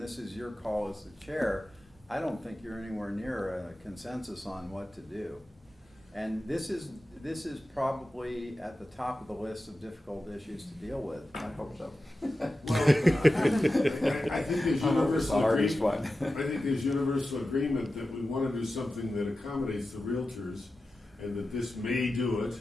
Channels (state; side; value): normal; both; correlation 0.93